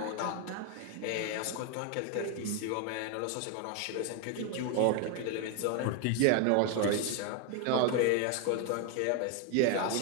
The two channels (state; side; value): different; both; correlation 0.01